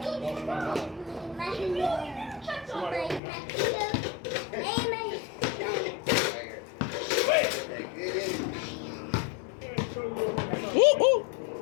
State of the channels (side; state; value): right; drops out; at 3.2 s